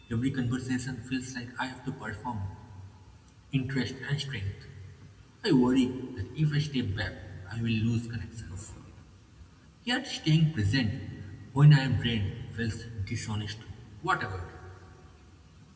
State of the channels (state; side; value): identical; both; correlation 1.00